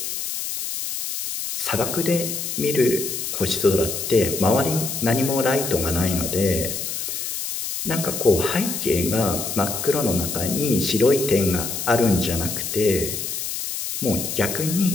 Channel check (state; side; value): noise; left; hiss, 4 dB below the sound